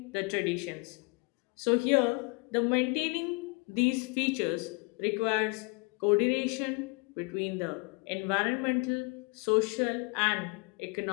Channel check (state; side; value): quieter; right; 30.5 dB